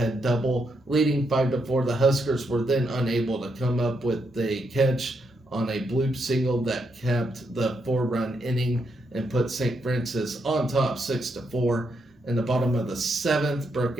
double. Leading 5-4, the Huskers were then unable to come up with a catch on a bloop single that capped the 4-run inning and put St. Francis on top 6-4. In the bottom of the seventh, Brooke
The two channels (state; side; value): normal; both; correlation 0.80